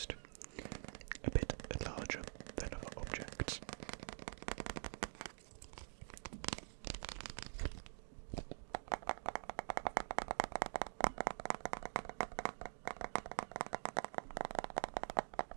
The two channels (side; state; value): left; silent; digital silence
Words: a bit larger than other objects.